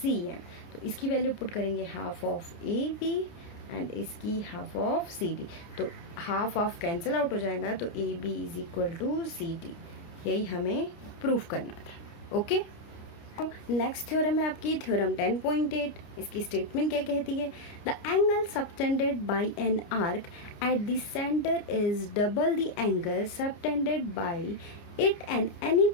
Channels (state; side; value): late; right; 29 ms